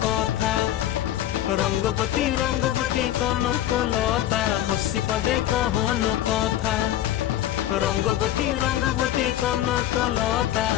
কথা। রঙ্গবতী রঙ্গবতী কনকলতা হসি পদে কহন কথা। রঙ্গবতী রঙ্গবতী কনকলতা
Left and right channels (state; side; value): quieter; right; 12.7 dB